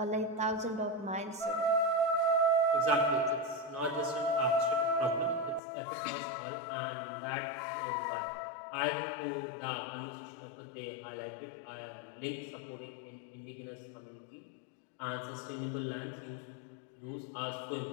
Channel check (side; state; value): right; drops out; at 5.6 s